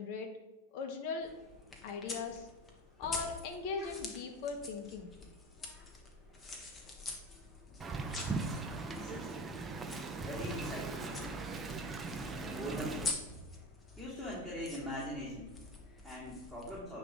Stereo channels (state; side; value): normal; both; correlation 0.30